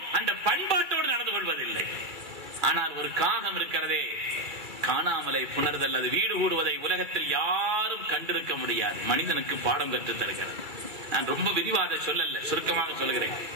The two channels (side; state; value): left; late; 2.3 ms